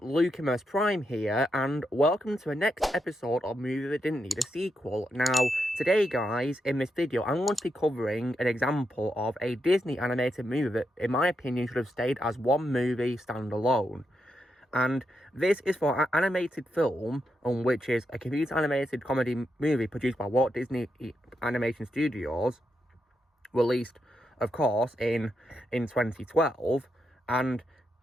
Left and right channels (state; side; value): normal; both; correlation 0.83